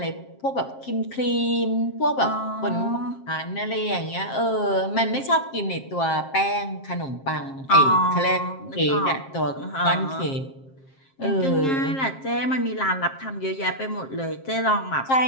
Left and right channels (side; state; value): right; late; 7.5 ms